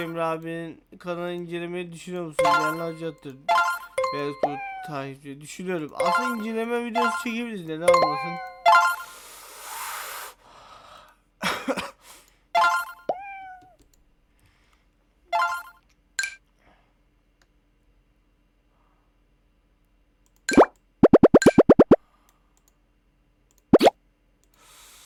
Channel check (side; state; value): both; identical; correlation 1.00